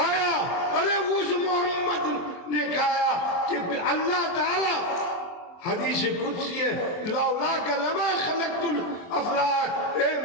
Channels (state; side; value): late; right; 23 ms